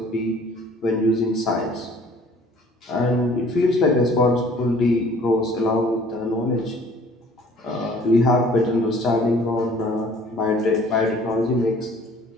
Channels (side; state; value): both; normal; correlation 0.53